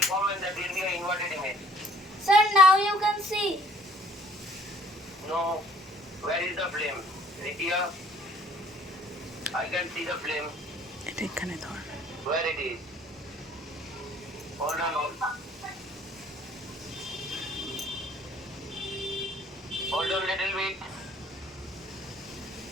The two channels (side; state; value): both; normal; correlation 0.57